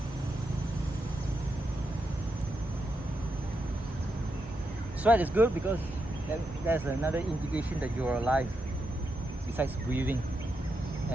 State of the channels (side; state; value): both; normal; correlation 0.84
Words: Sweat is good because there's another indication that you're alive, besides breathing